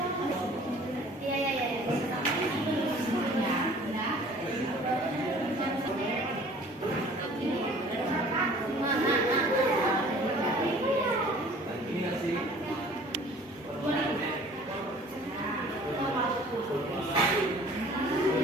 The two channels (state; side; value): normal; both; correlation 0.50